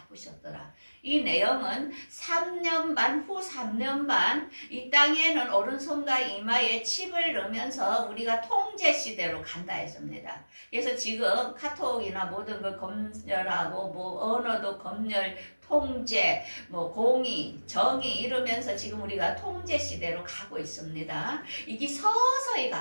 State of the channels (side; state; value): both; inverted; correlation -1.00